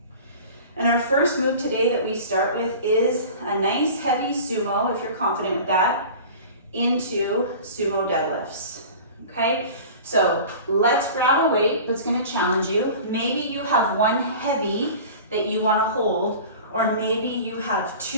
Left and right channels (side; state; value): both; inverted; correlation -0.38